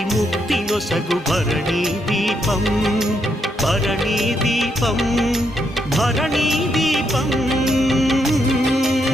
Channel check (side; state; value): both; normal; correlation 0.78